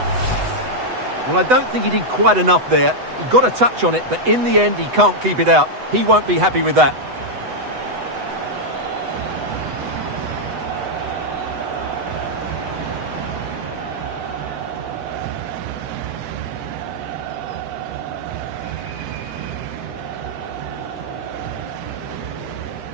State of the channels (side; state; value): left; late; 8.0 ms